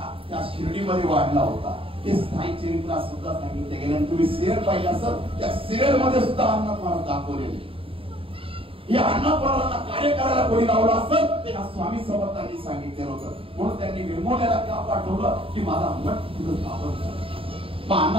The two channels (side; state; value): left; late; 0.27 ms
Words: त्या शिर्डीमध्ये वाढला होता. ते साई चरित्रात सुद्धा सांगितले गेले. तुम्ही सिरियल पाहिजे असेल, त्या सिरियल मध्ये सुद्धा अण्णानाथ महाराज दाखवलेले. हे अण्णानाथ महाराजांना कार्य करायला कोणी लावलं असेल ते स्वामी समर्थांनी सांगितलेलं होतं. म्हणून त्यांनी वेंगुर्ल्याला का पाठवलं की माझा मठ तिथं स्थापन करा. मग